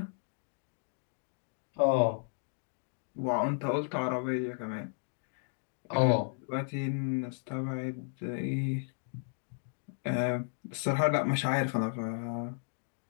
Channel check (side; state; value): right; silent; digital silence